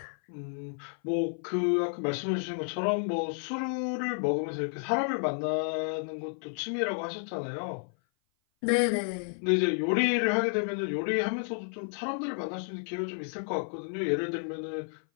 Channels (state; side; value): silent; right; 55 dB below the other